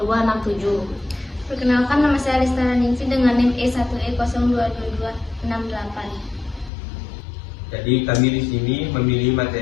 Perkenalkan, nama saya Lestana Ningsi dengan NIM E1E02268. Jadi kami di sini memilih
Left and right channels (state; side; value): drops out; right; at 6.7 s